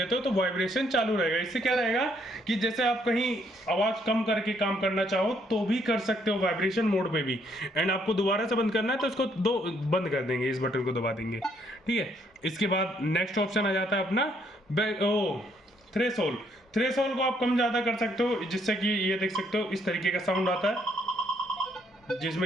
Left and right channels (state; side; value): normal; both; correlation 0.69